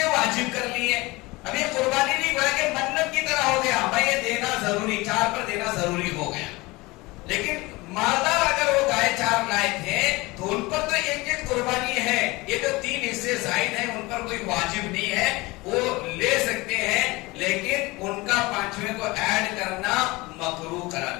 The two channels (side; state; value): right; quieter; 22.4 dB